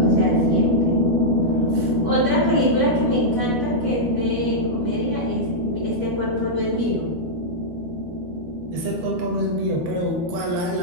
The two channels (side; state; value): left; late; 12 ms